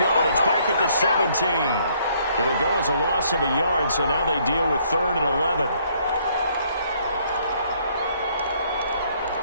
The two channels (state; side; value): inverted; both; correlation -0.66